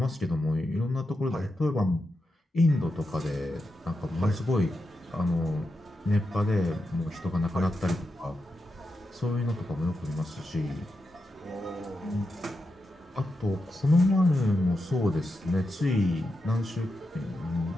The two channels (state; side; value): normal; both; correlation 0.87